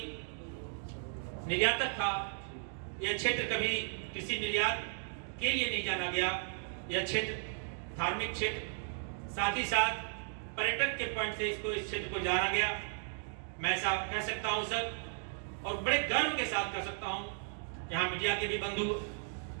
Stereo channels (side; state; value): left; silent; 54 dB below the other